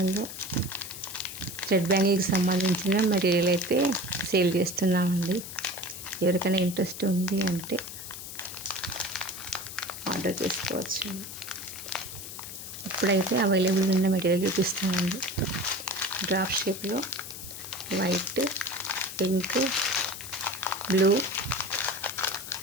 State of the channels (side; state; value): left; noise; hiss, 10 dB below the sound